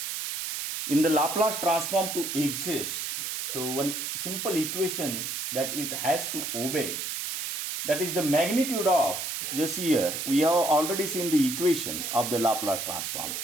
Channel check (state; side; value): noise; right; hiss, 4 dB below the sound